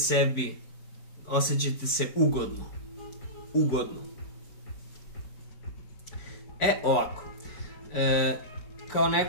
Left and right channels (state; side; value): late; right; 4.5 ms